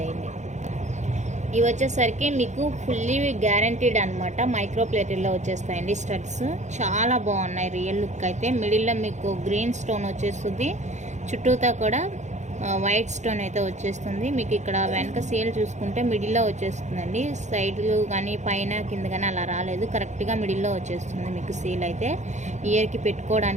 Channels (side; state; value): left; late; 0.34 ms